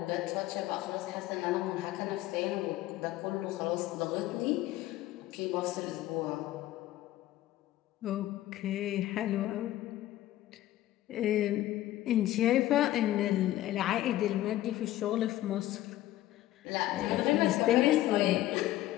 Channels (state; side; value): quieter; right; 14.8 dB